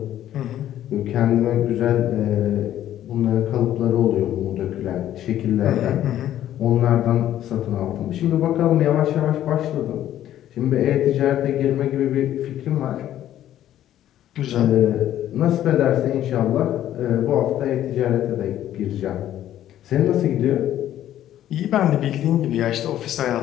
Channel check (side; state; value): right; quieter; 12.1 dB